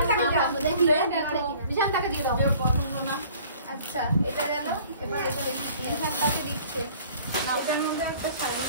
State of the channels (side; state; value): both; inverted; correlation -0.52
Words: দেখি বিশাল টাকা দিয়ে দাও আচ্ছা এটা গেল এবার এটা দেখি তাকে দিচ্ছে না ওটার মধ্যে একটা শাড়ি